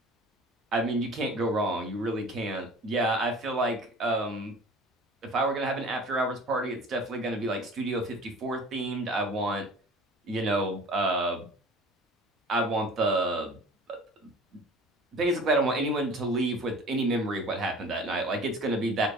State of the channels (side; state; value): both; normal; correlation 0.44